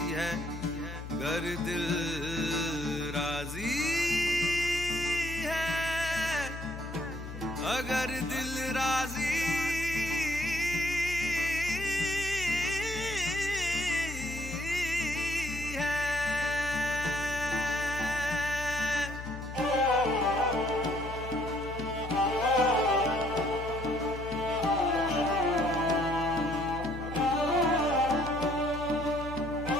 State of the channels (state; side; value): noise; left; hum, 10 dB below the sound